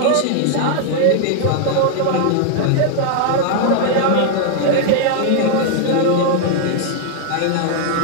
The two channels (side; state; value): both; different; correlation 0.00